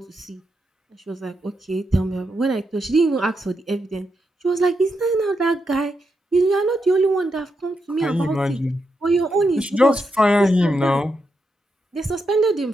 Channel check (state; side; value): normal; both; correlation 0.84